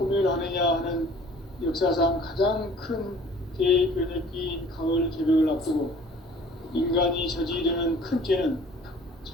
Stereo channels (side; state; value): both; normal; correlation 0.51